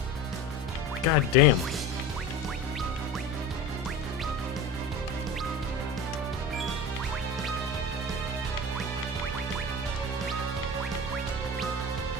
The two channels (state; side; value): normal; both; correlation 0.31